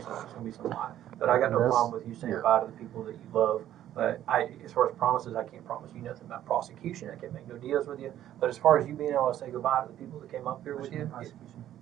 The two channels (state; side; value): quieter; left; 12.0 dB